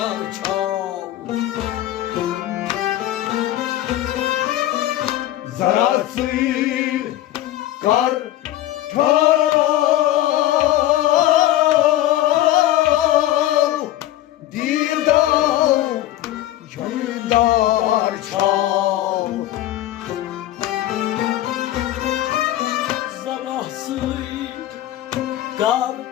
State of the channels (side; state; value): right; quieter; 14.2 dB